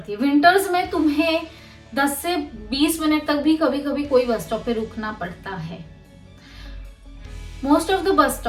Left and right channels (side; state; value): both; identical; correlation 1.00